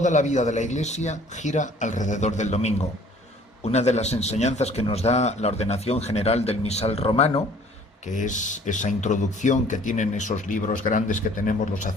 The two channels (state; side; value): normal; both; correlation 0.54